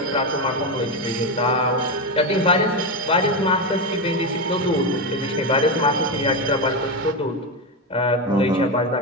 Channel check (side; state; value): both; normal; correlation 0.12